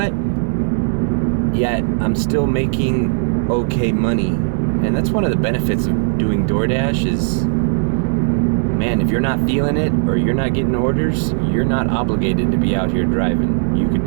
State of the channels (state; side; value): silent; left; digital silence